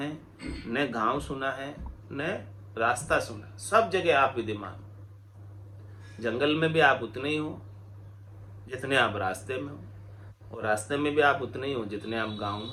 न गांव सुना है, न रास्ता सुना। सब जगह आप विद्यमान। जंगल में भी आप उतने ही हो जितने आप रास्ते में हो, और रास्ते में भी आप उतने ही हो जितने आप गांव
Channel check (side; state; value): both; identical; correlation 1.00